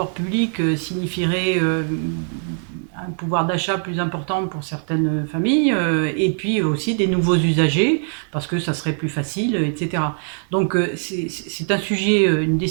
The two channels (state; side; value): silent; left; digital silence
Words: publics signifierait un pouvoir d'achat plus important pour certaines familles, et puis aussi des nouveaux usagers, parce que ça serait plus facile, etc. Donc c'est un sujet, une